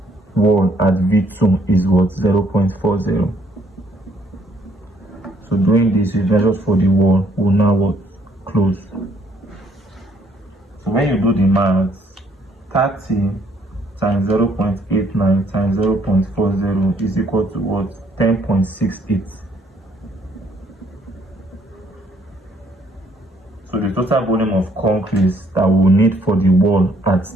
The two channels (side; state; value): both; normal; correlation 0.66